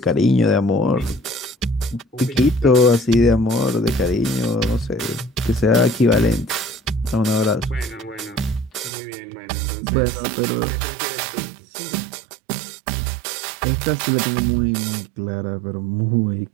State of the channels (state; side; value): drops out; left; at 8.9 s